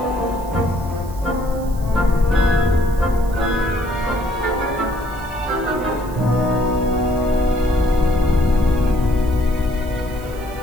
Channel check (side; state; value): right; noise; hiss, 21 dB below the sound